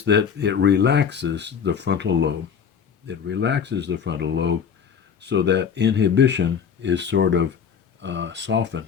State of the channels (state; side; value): quieter; right; 7.2 dB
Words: that it relaxes the frontal lobe. It relaxes the frontal lobe so that inhibition is sort of